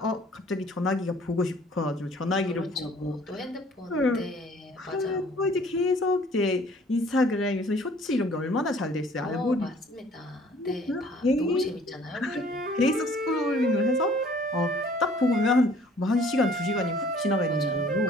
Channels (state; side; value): normal; both; correlation 0.55